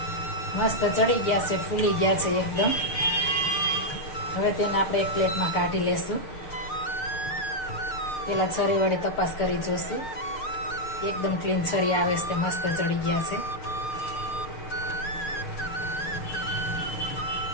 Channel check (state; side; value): late; right; 6.6 ms